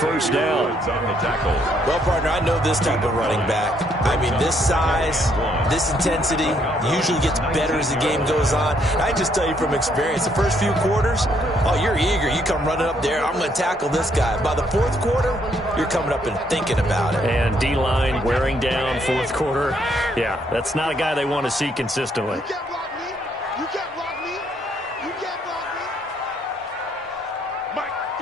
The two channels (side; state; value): both; normal; correlation 0.70